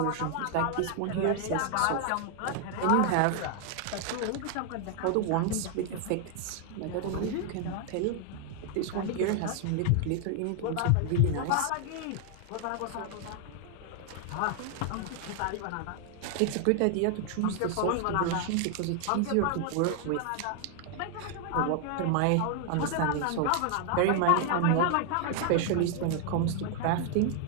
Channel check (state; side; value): different; both; correlation 0.00